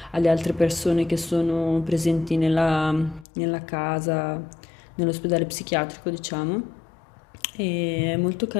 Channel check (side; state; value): right; drops out; at 3.2 s